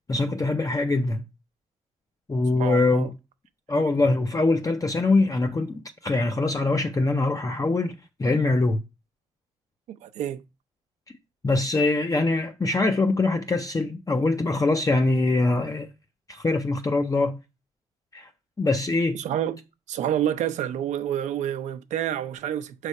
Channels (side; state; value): both; normal; correlation 0.77